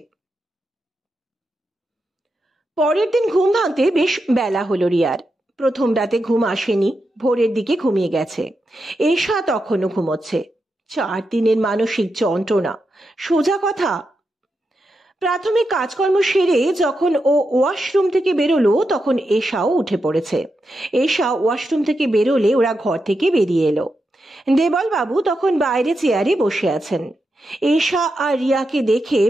পরের দিন ঘুম ভাঙতে বেশ বেলা হলো রিয়ার। প্রথম রাতে ঘুম আসেনি, ভোরের দিকে ঘুমিয়ে গেছে। এশা তখনও ঘুমোচ্ছে। 4 দিনের মানসিক যন্ত্রণা, সোজা কথা। প্রাথমিক কাজকর্ম সেরে যখন ও ওয়াশরুম থেকে বেরোলো তখন এশাও উঠে পড়েছে। এশা ওয়াশরুম থেকে বেরোলে ওরা ঘর থেকে বেরিয়ে এলো। দেবলবাবু তখন বাইরে চেয়ারে বসে আছেন। এশা আর রিয়াকে দেখে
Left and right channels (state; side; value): normal; both; correlation 0.87